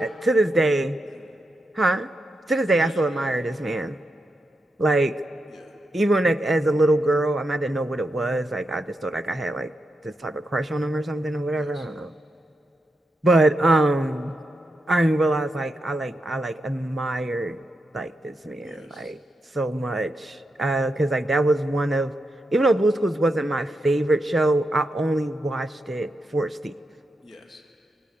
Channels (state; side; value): normal; both; correlation 0.86